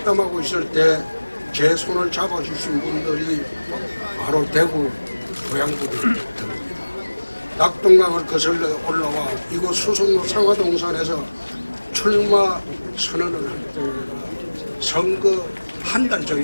있을 때 제 손을 잡아주신 분들이 바로 대구 고향분들입니다. 낙동강을 거슬러 올라와 이곳 수성로 상화동산에서 출마 선언을 할 때가 선거 한 달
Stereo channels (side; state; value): both; inverted; correlation -1.00